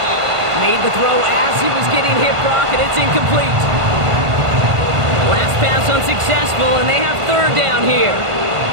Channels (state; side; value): late; left; 1.5 ms